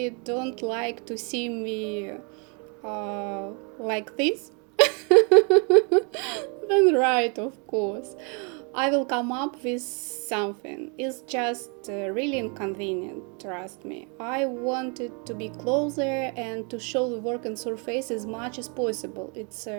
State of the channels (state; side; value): quieter; left; 35.2 dB